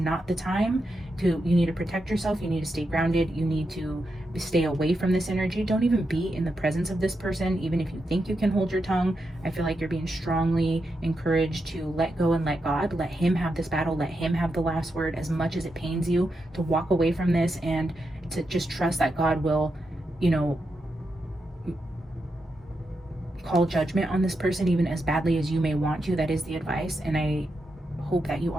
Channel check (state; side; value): normal; both; correlation 0.86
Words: the time to, you need to protect yourself, you need to stay grounded, you need to stay away from this energy. Don't even be in the presence of this person, even if you think you can hold your tongue. I feel like you're being strongly encouraged to let go and let God. Let him have this battle. Let him have the last word. As much as it pains you to walk away from this, and to just trust that God will, you know, call judgment on this person, even as badly as you may want to. That is the advice. And I hope that you